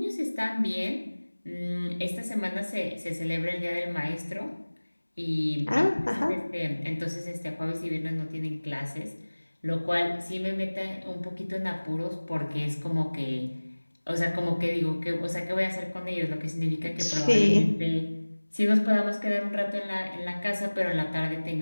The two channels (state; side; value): inverted; both; correlation -1.00